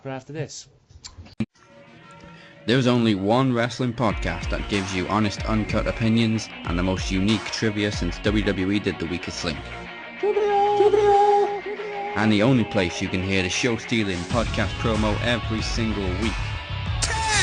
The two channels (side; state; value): both; identical; correlation 1.00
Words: right after this. There's only one wrestling podcast that gives you honest, uncut opinions and the most unique trivia since WWE did The Weakest Link. And the only place you can hear the show-stealing podcast promo every single week.